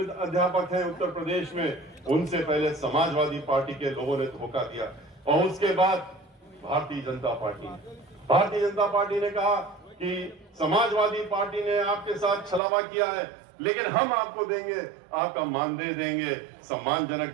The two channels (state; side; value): drops out; left; at 12.6 s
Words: अध्यापक हैं उत्तर प्रदेश में, उनसे पहले समाजवादी पार्टी के लोगों ने धोखा दिया। और उसके बाद भारतीय जनता पार्टी ने कहा कि समाजवादी पार्टी ने आपके साथ छलावा किया है, लेकिन हम आपको देंगे, आपका मानदेय देंगे, सम्मानजनक